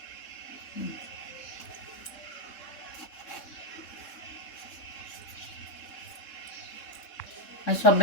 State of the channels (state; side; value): late; right; 3.6 ms